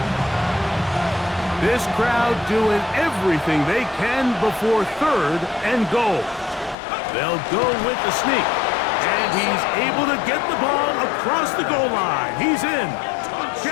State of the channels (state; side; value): drops out; right; at 6.8 s